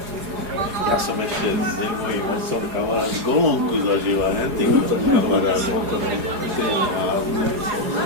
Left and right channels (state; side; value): late; left; 4.8 ms